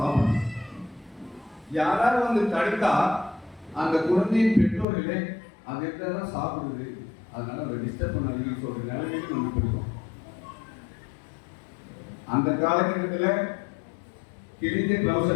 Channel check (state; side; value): drops out; right; at 4.9 s